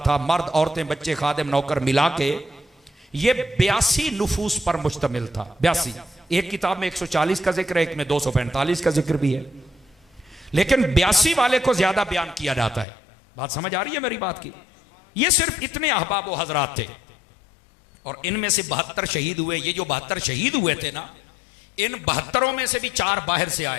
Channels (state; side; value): drops out; right; at 12.9 s